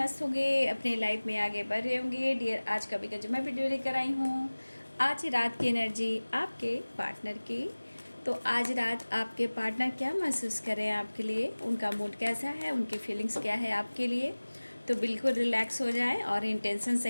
होंगे, अपने लाइफ में आगे बढ़ रहे होंगे। डियर, आज का भी जो मैं वीडियो लेकर आई हूँ, आज रात की एनर्जी आपके पार्टनर की। तो आज रात आपके पार्टनर क्या महसूस कर रहे हैं आपके लिए, उनका मूड कैसा है, उनकी फीलिंग्स क्या है आपके लिए। तो बिल्कुल रिलैक्स हो जाएं और इंटेंशन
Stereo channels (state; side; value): inverted; both; correlation -1.00